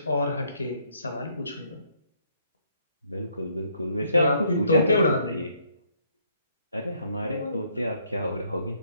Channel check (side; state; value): both; inverted; correlation -0.69